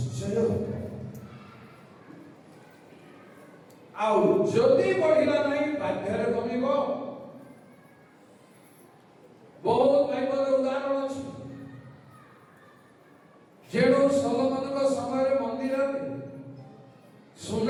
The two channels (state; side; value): identical; both; correlation 1.00